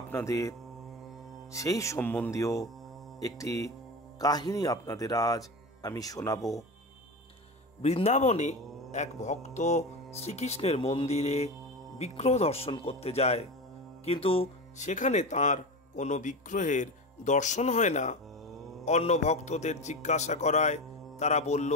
সেই সম্বন্ধীয় একটি কাহিনী আপনাদের আজ আমি শোনাবো। বৃন্দাবনে এক ভক্ত শ্রীকৃষ্ণের মন্দিরে বিগ্রহ দর্শন করতে যায়, কিন্তু সেখানে তার কোনো বিগ্রহের দর্শন হয় না। অন্য ভক্তদের জিজ্ঞাসা করায় তারা বলল,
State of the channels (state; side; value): normal; both; correlation 0.23